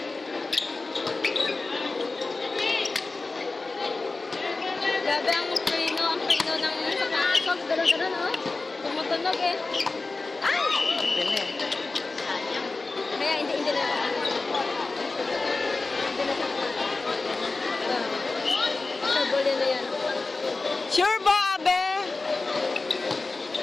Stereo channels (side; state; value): right; quieter; 3.6 dB